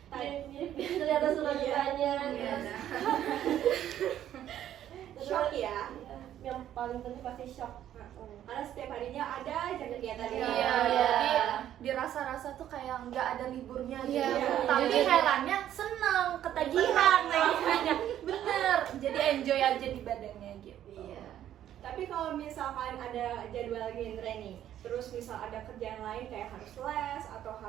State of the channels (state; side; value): quieter; left; 11.3 dB